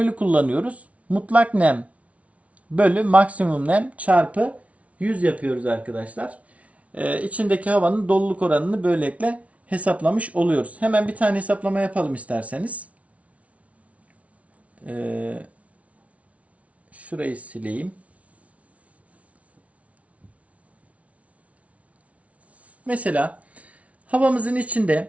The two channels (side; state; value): left; late; 0.065 ms